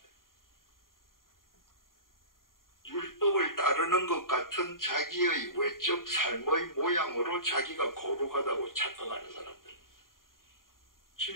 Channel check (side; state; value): right; late; 0.91 ms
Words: 율법을 따르는 것 같은 자기의 외적 삶의 모양으로 자기가 거룩하다고 착각하는 사람들.